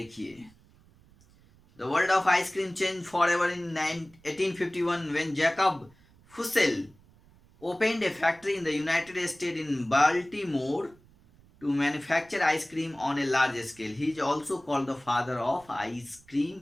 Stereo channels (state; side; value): noise; right; rumble, 28 dB below the sound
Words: the world of ice cream change for ever in 1851 when Jacob Fussell opened a factory in the United States in Baltimore to manufacture ice cream on a large scale. He is also called the father of ice